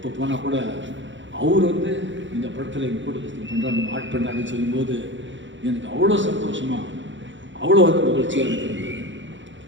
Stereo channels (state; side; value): late; left; 0.54 ms